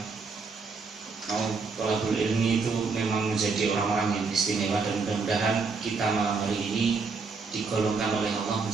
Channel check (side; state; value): left; quieter; 4.5 dB